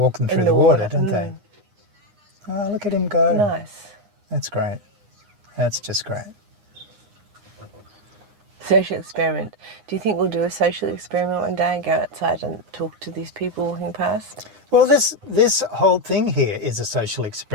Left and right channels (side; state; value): left; late; 9.8 ms